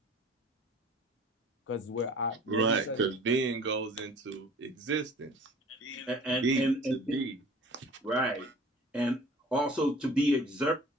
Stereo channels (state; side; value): normal; both; correlation 0.46